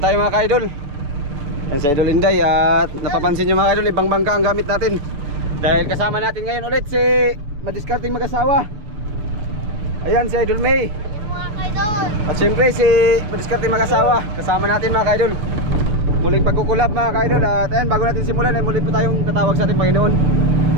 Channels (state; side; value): late; left; 6.9 ms